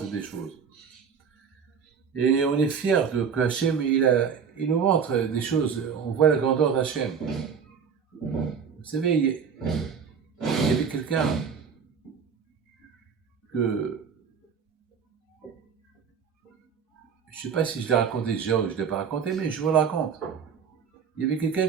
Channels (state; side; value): quieter; left; 6.6 dB